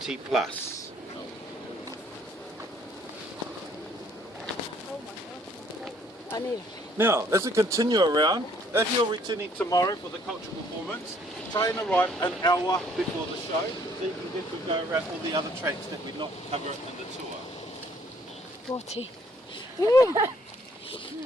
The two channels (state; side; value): normal; both; correlation 0.63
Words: plus. Now, as we continue around, if you're returning tomorrow for the cultural performance, try and arrive an hour before the show, so you can get to go around all the other tracks that we not cover in the tour. 40.